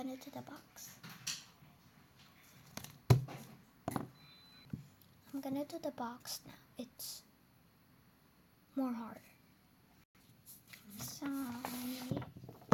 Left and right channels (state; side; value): identical; both; correlation 1.00